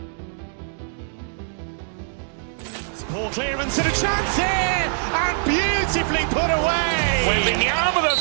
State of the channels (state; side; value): silent; left; digital silence